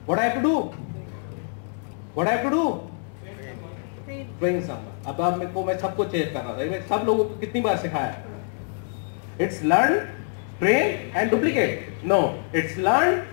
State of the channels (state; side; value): silent; right; digital silence